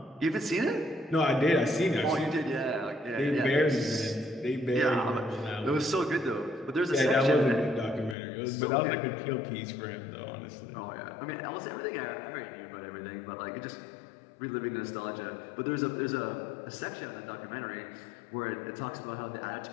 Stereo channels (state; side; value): drops out; right; at 8.2 s